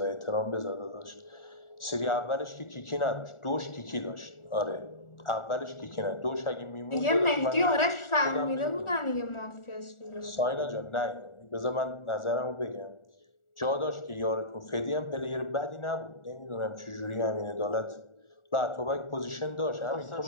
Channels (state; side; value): late; right; 1.4 ms